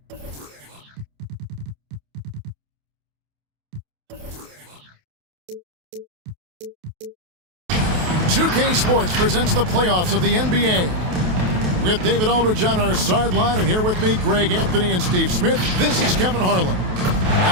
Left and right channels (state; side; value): late; left; 28 ms